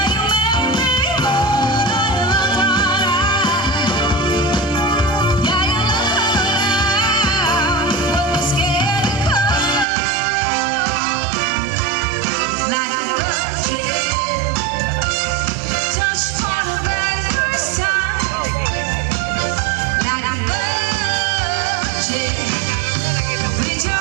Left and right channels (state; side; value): drops out; left; at 9.9 s